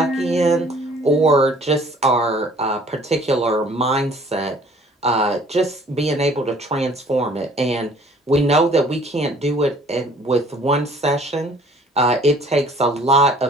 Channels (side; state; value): both; normal; correlation 0.54